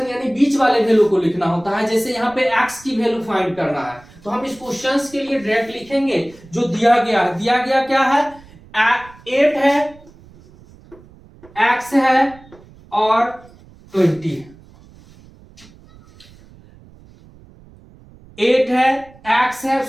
यानी बीच वाले वैल्यू को लिखना होता है। जैसे यहाँ पे x की वैल्यू फाइंड करना है तो हम इस क्वेश्चंस के लिए डायरेक्ट लिखेंगे जो दिया गया है। दिया गया क्या है? 8 है, x है और 20 है। 8 है, x है,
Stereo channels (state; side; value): noise; right; rumble, 24 dB below the sound